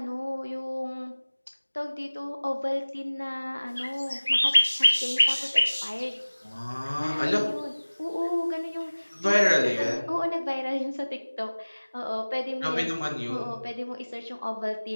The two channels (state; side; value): inverted; both; correlation -1.00